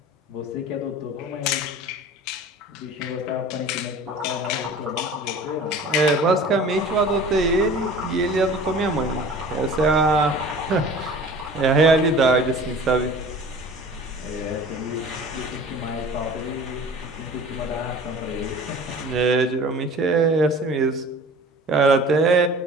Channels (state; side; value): normal; both; correlation 0.43